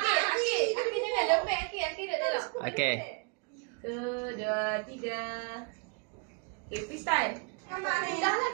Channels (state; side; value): quieter; left; 31.7 dB